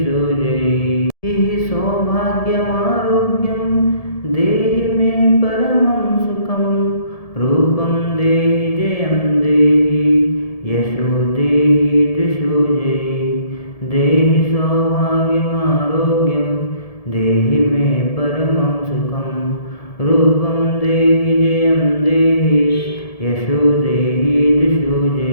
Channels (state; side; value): late; right; 1.7 ms